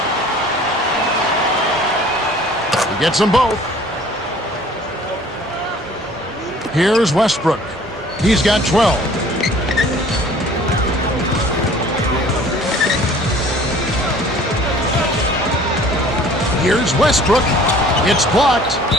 He gets them both. Here's Westbrook. He's got 12. Here's Westbrook. It's blocked.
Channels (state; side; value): normal; both; correlation 0.51